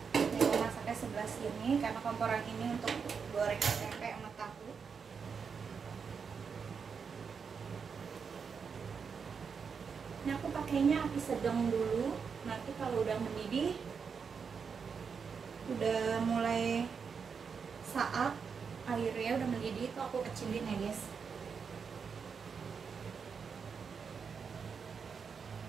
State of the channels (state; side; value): quieter; left; 6.0 dB